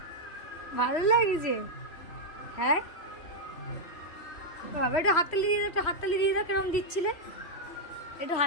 ভালো লাগছে? হ্যাঁ বাবা, একটু হাততালি দিয়ে দাও, একটু হাততালি দিয়ে দাও। কেরম দিচ্ছিলে? একটু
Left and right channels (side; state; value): right; late; 3.1 ms